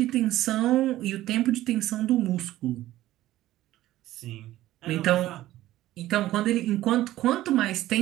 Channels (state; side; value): quieter; left; 15.0 dB